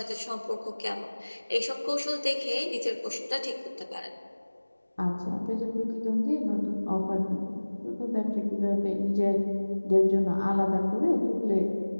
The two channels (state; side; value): inverted; both; correlation -1.00